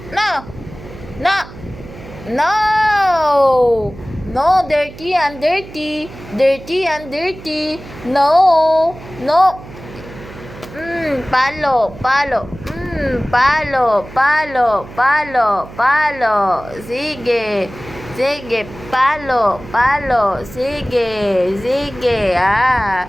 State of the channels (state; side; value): noise; right; hum, 16 dB below the sound